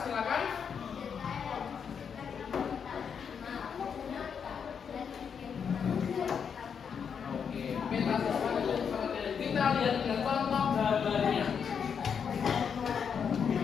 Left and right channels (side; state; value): right; quieter; 6.9 dB